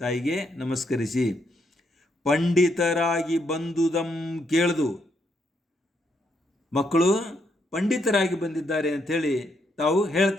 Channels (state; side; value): normal; both; correlation 0.76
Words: ತಾಯಿಗೆ ನಮಸ್ಕರಿಸಿ, ಪಂಡಿತರಾಗಿ ಬಂದುದಂ ಕೇಳ್ದು, ಮಕ್ಕಳು ಪಂಡಿತರಾಗಿ ಬಂದಿದ್ದಾರೆ ಅಂಥೇಳಿ ತಾವು